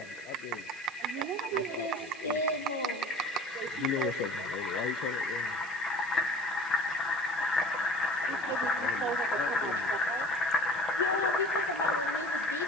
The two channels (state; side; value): noise; right; hiss, 20 dB below the sound